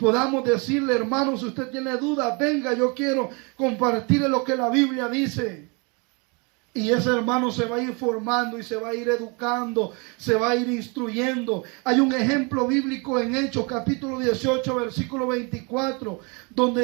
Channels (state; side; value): quieter; left; 31.0 dB